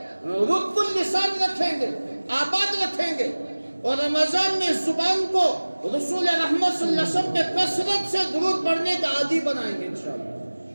رطب اللسان رکھیں گے، آباد رکھیں گے، اور رمضان میں زبان کو رسول رحمت صلی اللہ علیہ وسلم پہ کثرت سے درود پڑھنے کا عادی بنائیں گے انشاءاللہ۔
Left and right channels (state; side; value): inverted; both; correlation -1.00